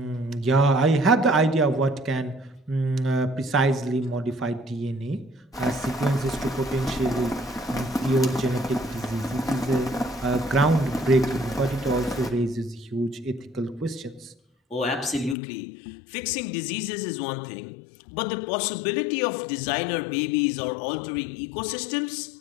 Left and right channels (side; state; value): right; drops out; at 15.4 s